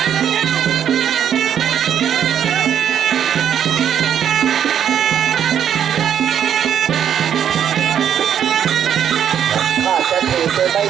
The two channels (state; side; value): quieter; left; 9.1 dB